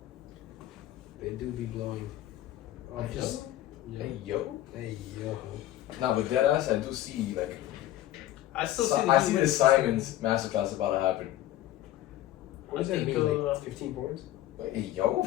They do be blowing. Oh, Hey, just. Hey, yo. Hey, yo. Nah, but deadass, I do see, like, I still see. I see the Simons masterclass about to happen. What does I that think, mean? Like 15 points? Like, hey, yo.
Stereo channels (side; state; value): right; quieter; 13.8 dB